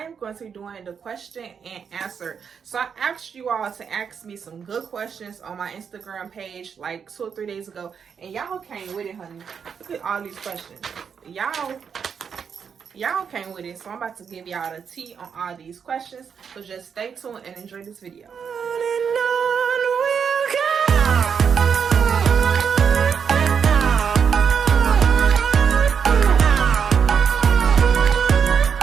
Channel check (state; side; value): quieter; left; 6.8 dB